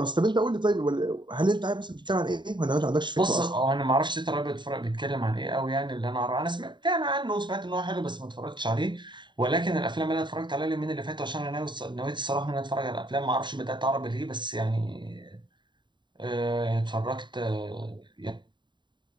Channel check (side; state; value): left; late; 0.22 ms